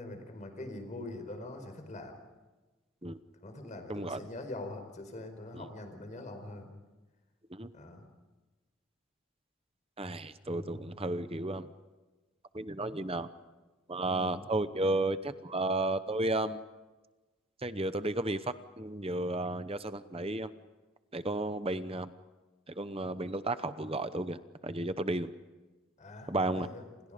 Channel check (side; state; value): both; normal; correlation 0.49